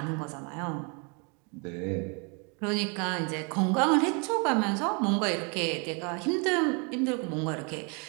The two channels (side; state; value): left; quieter; 34.0 dB